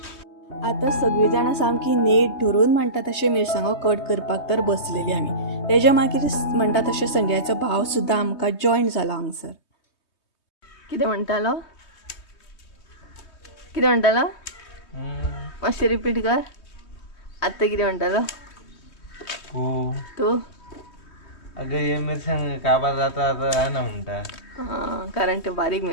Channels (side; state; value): right; late; 3.2 ms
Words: आता सगळी जाणां सामकी नेट धरून म्हणटा तशें मिरसांगो कट करपाक तर बसलेली आमी. तेज्या मागीर म्हणटा तशें संजयाचो भाव सुद्दां आमकां जॉयन जालो हांगसर. कितें म्हणटालो कितें म्हणटालो मातशें रिपीट कर. आतां कितें म्हणटालो तूं? अगं हे मिरसांग काबार जाता आहे ना म्हणटा. हां, कारण ते बारीक